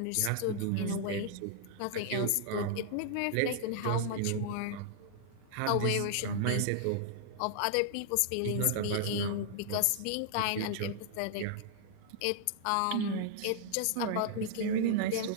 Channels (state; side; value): different; both; correlation -0.01